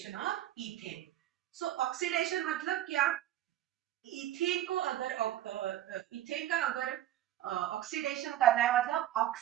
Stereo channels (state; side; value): quieter; left; 12.6 dB